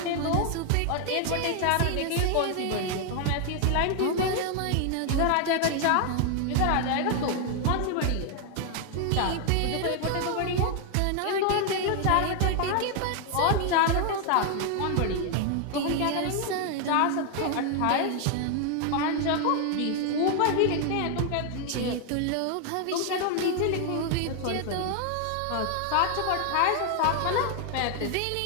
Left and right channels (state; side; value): different; both; correlation 0.00